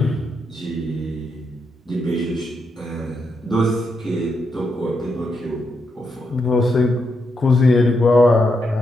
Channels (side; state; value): both; normal; correlation 0.82